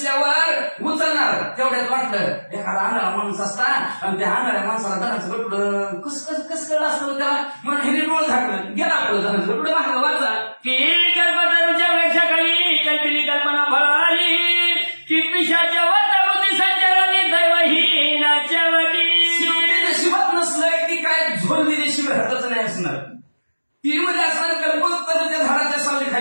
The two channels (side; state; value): both; inverted; correlation -1.00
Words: उचलणार तेवढ्यात वाटलं एखादा आंधळा माणूस असता आणि त्या आंधळ्या माणसाला धनाचं गटुडं कस कळलं असतं त्याला म्हणून हे डोळ झाकलं गेला आपलं धनाचं गटुडं मागं वाचा की कल्पतरूच्या वृक्षाखाली कल्पिली कल्पना फळाली की पिशाच्या वाटा बुद्धी संचलनी दैवहीनाच्या वाटी. नशिबात नसलं की काय झोल दिल्याशिवाय राहतच नाही असणार. ती मध्ये असणार कल्पकता त्या झाडाच्या सावली